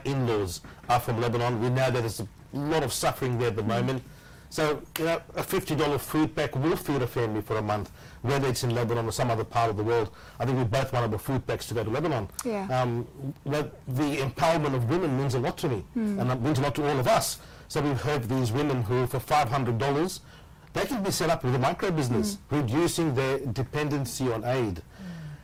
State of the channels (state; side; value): identical; both; correlation 1.00